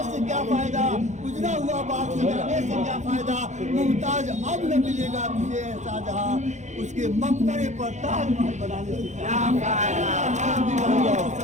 से क्या फायदा, उजड़ा हुआ बाग सजाने से क्या फायदा। मुमताज अब न मिलेगा तुझे ऐसा जहां, उसके मकबरे पर ताजमहल बनाने से क्या फायदा।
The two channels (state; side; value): late; left; 0.34 ms